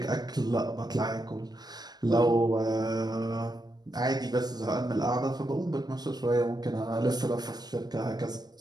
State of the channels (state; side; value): late; left; 0.19 ms